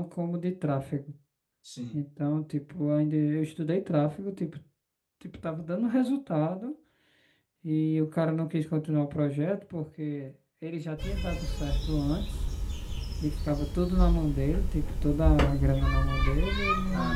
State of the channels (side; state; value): both; identical; correlation 1.00